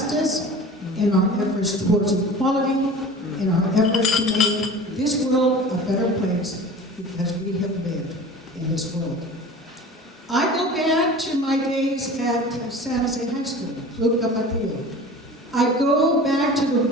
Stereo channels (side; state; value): both; normal; correlation 0.39